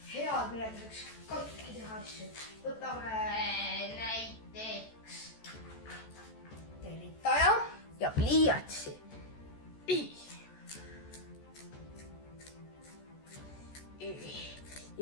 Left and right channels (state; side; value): late; right; 14 ms